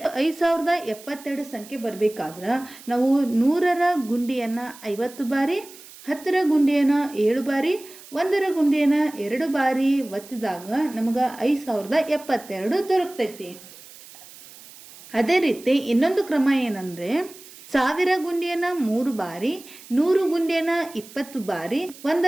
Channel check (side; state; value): right; noise; hiss, 19 dB below the sound